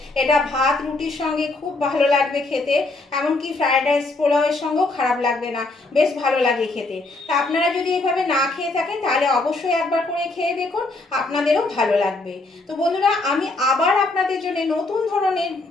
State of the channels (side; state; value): right; quieter; 3.1 dB